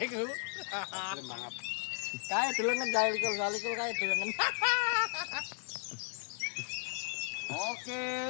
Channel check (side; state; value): right; quieter; 38.8 dB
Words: Mangap. Kae delengen kae likul kae delengen. Oke.